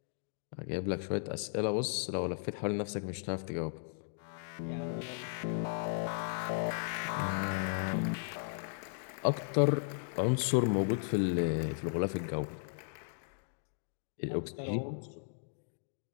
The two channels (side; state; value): right; silent; digital silence